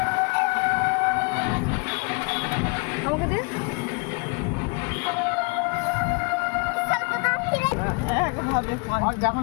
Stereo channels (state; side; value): quieter; right; 32.2 dB